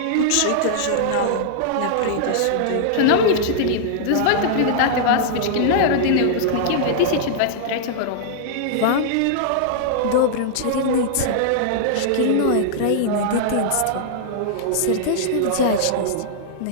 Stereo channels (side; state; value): both; different; correlation -0.01